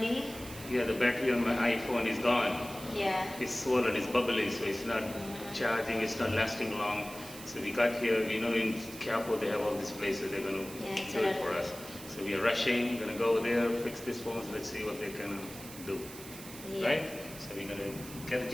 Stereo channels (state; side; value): noise; right; hiss, 14 dB below the sound